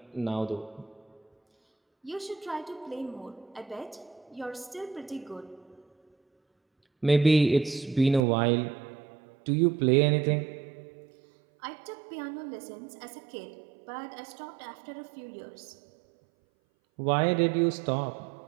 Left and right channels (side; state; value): left; drops out; at 8.2 s